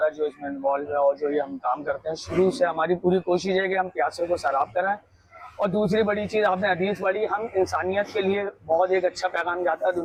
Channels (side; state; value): both; identical; correlation 1.00